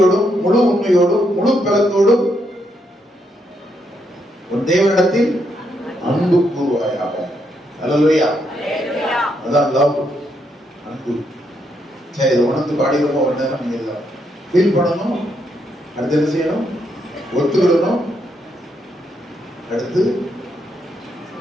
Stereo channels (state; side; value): normal; both; correlation 0.77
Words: முழு உண்மையோடும் முழு பலத்தோடும் உன் தேவனிடத்தில் அன்பு கூறுவாயாக. அல்லேலூயா. அதான் லவ், அன்பு. சரி, இதை உணர்ந்து பாடிடுவோம். ஒரு நேரம் நீங்க ஃபீல் பண்ணணும். அடுத்து என்ன செய்யணும்? ஒத்துக்கிடணும். அடுத்து